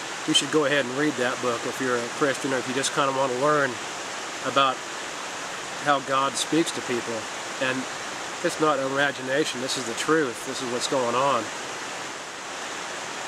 you should go ahead and read that book if you're a Christian, or if you just kind of want to learn about how God speaks to people. And it's not imagination, this is the truth, this is what's going on.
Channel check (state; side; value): identical; both; correlation 1.00